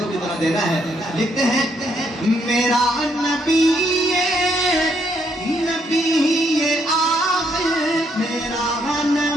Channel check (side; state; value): both; normal; correlation 0.73